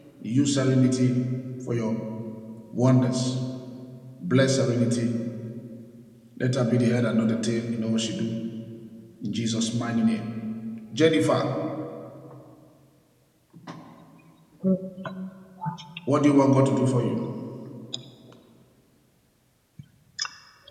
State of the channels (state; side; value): identical; both; correlation 1.00